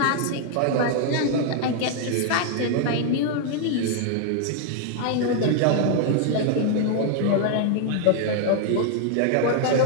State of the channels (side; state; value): both; different; correlation 0.00